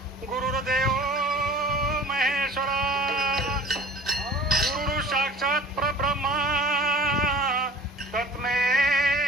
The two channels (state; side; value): normal; both; correlation 0.44